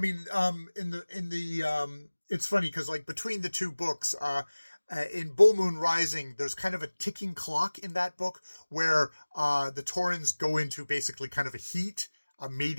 it's funny because like between the two books, in Bull Moon Rising, there's kind of a ticking clock in that book where the Taurens go into basically kind of a heat, a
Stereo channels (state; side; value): inverted; both; correlation -1.00